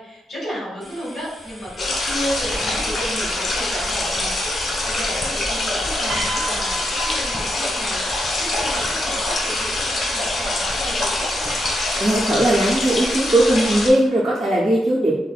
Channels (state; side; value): normal; both; correlation 0.82